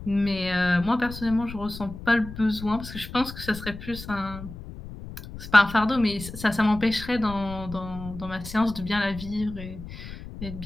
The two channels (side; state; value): left; noise; rumble, 12 dB below the sound